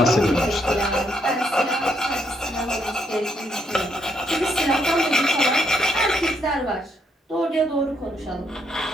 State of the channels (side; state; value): both; normal; correlation 0.74